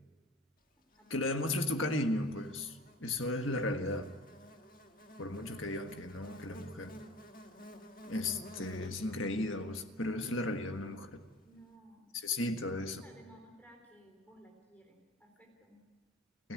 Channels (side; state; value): both; normal; correlation 0.42